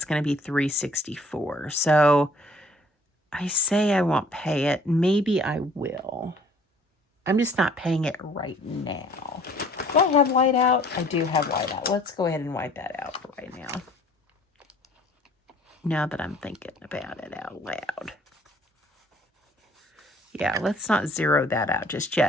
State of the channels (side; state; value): both; normal; correlation 0.56